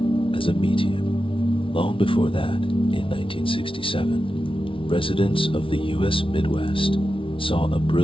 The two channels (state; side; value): late; right; 0.25 ms